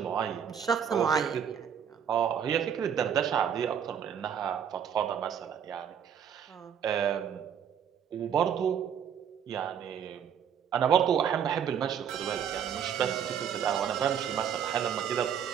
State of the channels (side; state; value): left; quieter; 8.3 dB